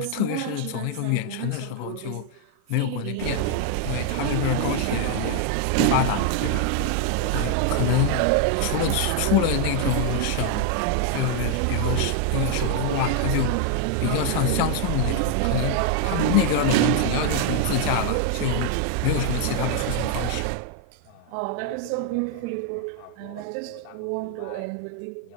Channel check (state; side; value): different; both; correlation 0.00